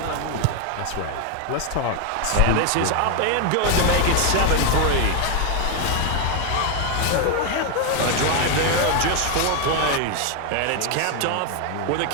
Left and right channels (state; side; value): different; both; correlation 0.01